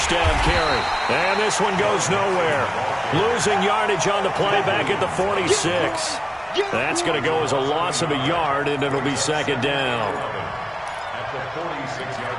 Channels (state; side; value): identical; both; correlation 1.00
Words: down carry. And this one goes nowhere. Losing yardage on the play back at the 46. That's going to go as a loss of a yard, and it'll be 2nd down. At the